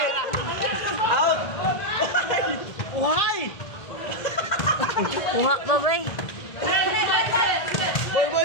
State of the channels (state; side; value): late; right; 1.7 ms